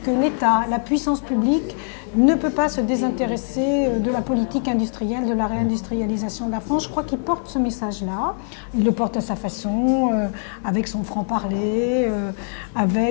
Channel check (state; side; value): silent; right; digital silence